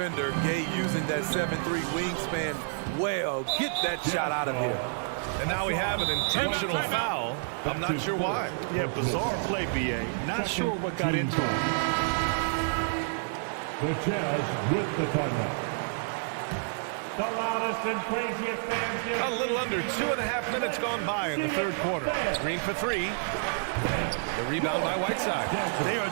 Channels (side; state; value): left; silent; digital silence